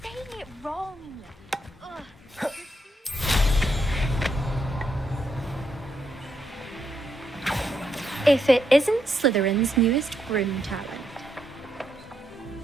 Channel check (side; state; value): both; normal; correlation 0.79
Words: saying it wrong. Ugh. If it isn't Slytherin's newest broom talent.